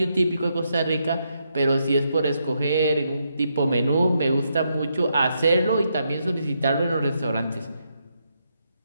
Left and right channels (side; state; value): both; inverted; correlation -0.80